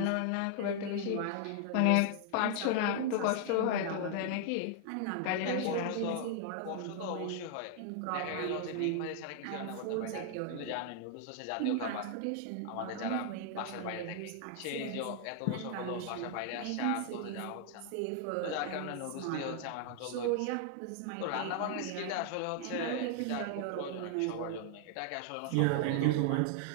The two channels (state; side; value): different; both; correlation 0.00